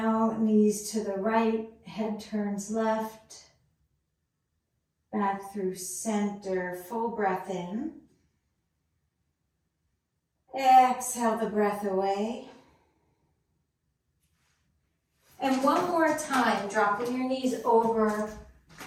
knees to the right, head turns left. Back through center, full breath in. Exhale the breath away. And one more time, dropping your knees over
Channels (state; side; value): identical; both; correlation 1.00